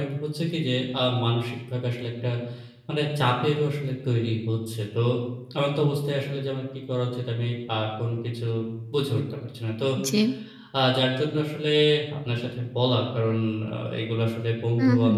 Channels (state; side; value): identical; both; correlation 1.00